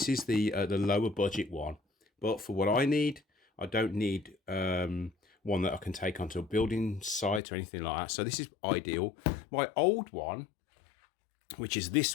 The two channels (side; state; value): right; drops out; at 7.4 s